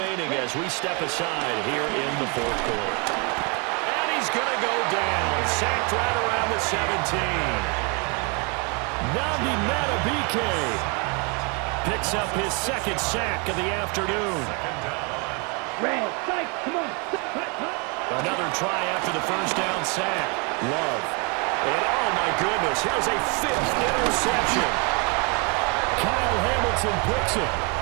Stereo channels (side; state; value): left; quieter; 33.1 dB